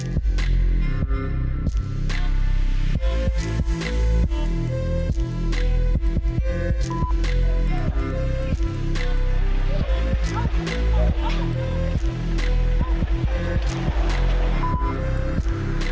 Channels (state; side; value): identical; both; correlation 1.00